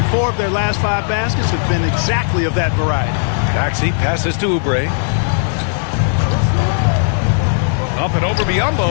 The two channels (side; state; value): right; silent; digital silence